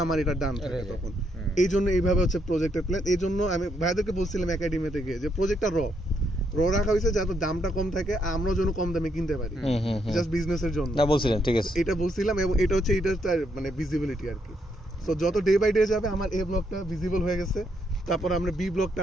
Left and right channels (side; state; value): both; normal; correlation 0.76